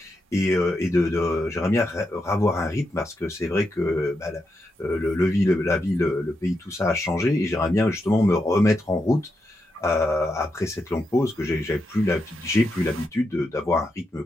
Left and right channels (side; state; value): both; normal; correlation 0.84